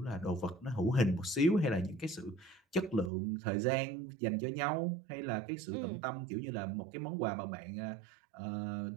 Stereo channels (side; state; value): left; drops out; at 3.1 s